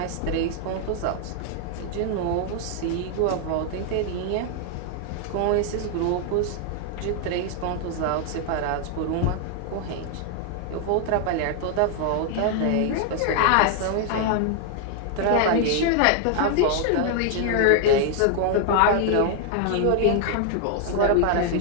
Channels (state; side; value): different; both; correlation 0.00